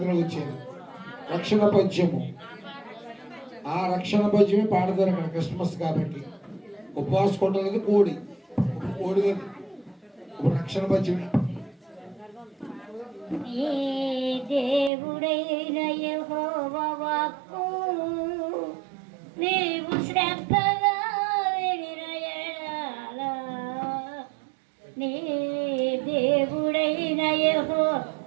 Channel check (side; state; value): left; drops out; at 14.9 s